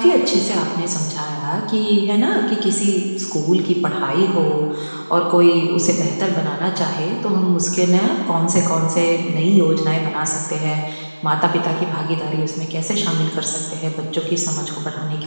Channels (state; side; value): inverted; both; correlation -1.00